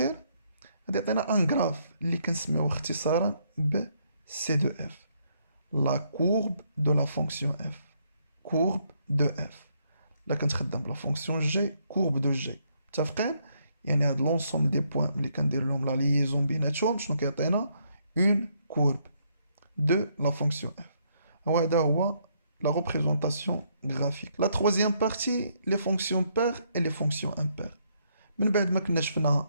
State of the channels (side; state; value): both; inverted; correlation -0.72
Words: غادي يعطينا ان غراف اللي كنسميوه اختصارا ب سي دو اف، لا كورب دو لا فونكسيون اف. كورب دو اف لا كنتخدم بلا فونكسيون جي كورب دو جي. متفقين؟ يعني هاد لونسومبل دي بوين ملي كندير لهم لا ليزون بيناتهم شنو كيعطينا؟ اون كورب دو لا فونكسيون اف. وهذا هو la représentation graphique. La troisième partie, les fonctions paires et les fonctions impaires. من بعد ما كنا